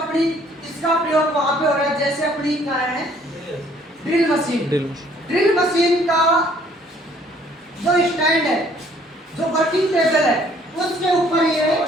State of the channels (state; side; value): normal; both; correlation 0.60